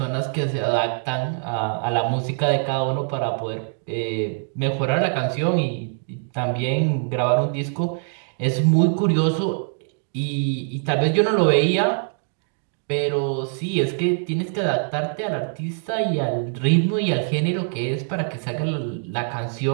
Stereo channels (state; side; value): silent; left; 63 dB below the other